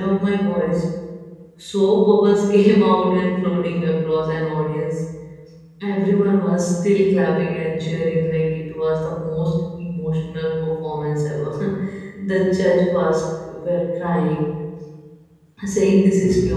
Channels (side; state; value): both; identical; correlation 1.00